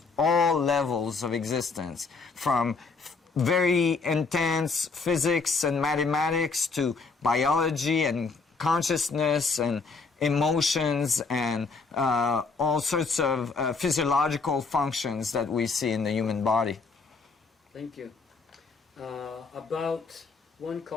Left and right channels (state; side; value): quieter; right; 4.5 dB